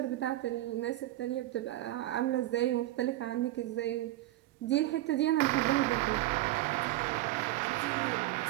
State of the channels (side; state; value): left; quieter; 16.2 dB